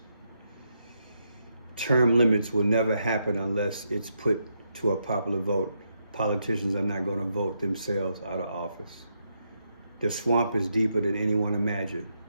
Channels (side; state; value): both; inverted; correlation -0.80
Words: Term limits will never happen unless it's put to a popular vote. Politicians are not going to vote themselves out of office. The swamp is deeper than anyone imagined.